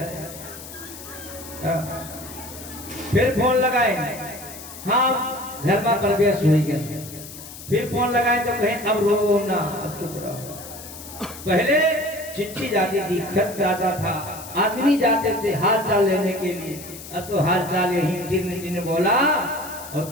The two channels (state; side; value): noise; left; hiss, 14 dB below the sound